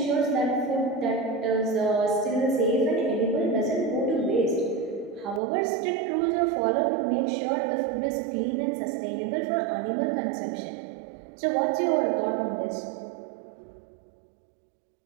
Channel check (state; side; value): drops out; left; at 5.4 s